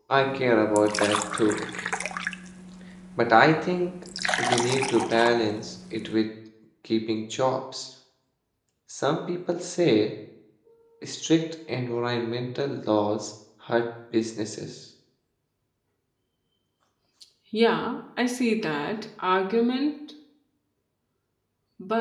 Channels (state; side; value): identical; both; correlation 1.00